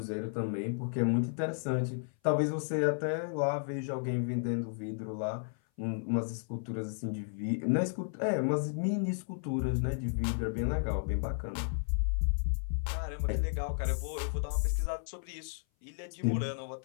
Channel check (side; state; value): right; silent; 55 dB below the other